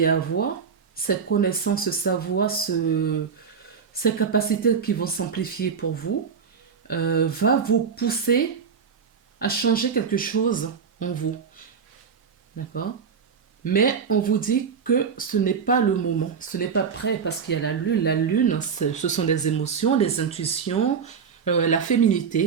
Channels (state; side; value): quieter; left; 6.3 dB